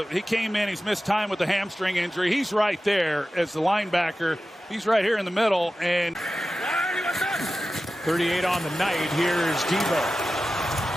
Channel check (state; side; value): normal; both; correlation 0.94